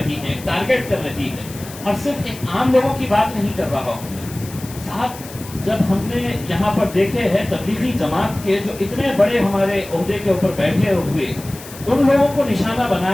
है, टारगेट कर रही है, और सिर्फ एक आम लोगों की बात नहीं कर रहा हूं साहब। जब हमने यहाँ पर देखे हैं तबलीगी जमात के जो इतने बड़े हमारे ओहदे के ऊपर बैठे हुए, उन लोगों को निशाना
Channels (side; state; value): left; noise; hiss, 16 dB below the sound